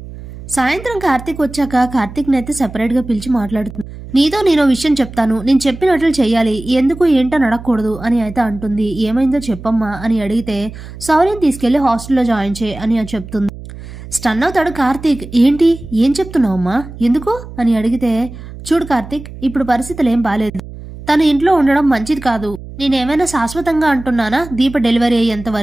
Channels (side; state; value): right; noise; hum, 14 dB below the sound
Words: సాయంత్రం కార్తీక్ వచ్చాక కార్తీక్ నైతే సెపరేట్ గా పిలిచి మాట్లాడుతుంది. నీతో నేను విషయం చెప్తాను, నేను చెప్పినట్లు చెయ్యాలి, ఎందుకు ఏంటని అడగకూడదు అని అయితే అంటుంది. ఏమైందో చెప్పమ్మా అని అడిగితే శౌర్యం తీసుకెళ్లి హాస్టల్లో జాయిన్ చేయి అని చెప్తుంది. స్టన్ అవుతాడు కార్తీక్. ఏంటి, ఏం చెప్తున్నావమ్మా, ఎందుకు అని అడిగితే చూడు కార్తీక్, ఇప్పుడు పరిస్థితులు ఏం బాలేదు, తను ఇంట్లో ఉండడం మంచిది కాదు, నేనేమైనా శాశ్వతంగా అంటున్నానా, దీప డెలివరీ అయ్యేంత